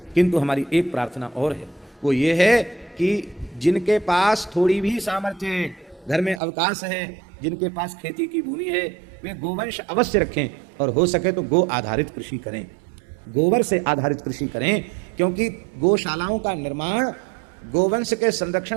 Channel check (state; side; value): drops out; left; at 6.4 s